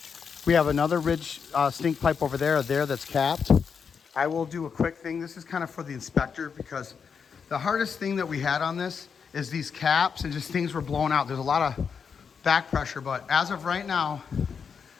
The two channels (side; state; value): right; quieter; 6.3 dB